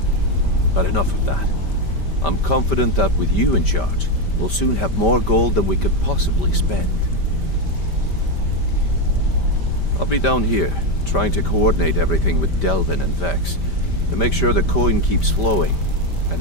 But enough of that. I'm confident that with you in charge, we'll soon have more gold than we could possibly spend. I'll be down here, trying to coordinate everything with Delvin and Vex, to make sure the coin keeps flowing,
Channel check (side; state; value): right; late; 5.1 ms